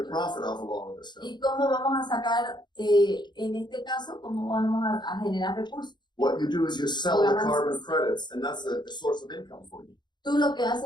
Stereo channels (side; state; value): right; late; 0.21 ms